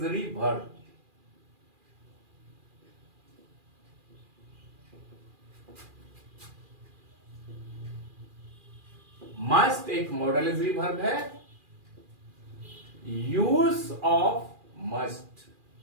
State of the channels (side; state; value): left; late; 2.4 ms